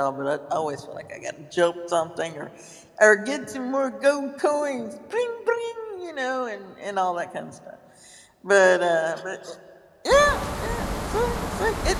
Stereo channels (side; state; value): both; identical; correlation 1.00